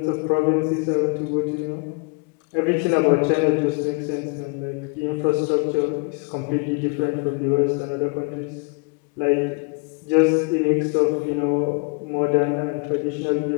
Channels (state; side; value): quieter; right; 32.7 dB